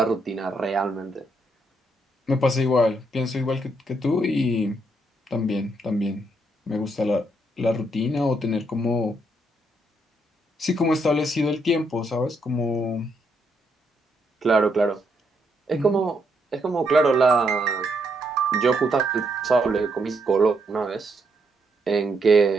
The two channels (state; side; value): normal; both; correlation 0.76